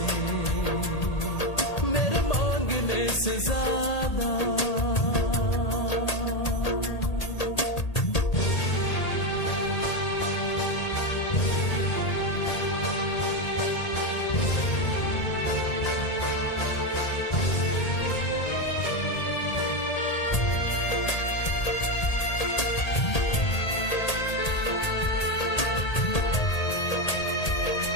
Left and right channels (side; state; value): right; late; 1.8 ms